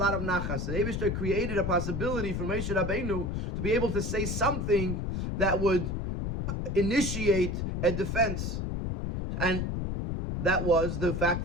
of nachas. The Eibishter created a possibility for Moshe Rabbeinu to be able to say something that would initiate a defense, and that was the fact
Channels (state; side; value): noise; left; rumble, 2 dB below the sound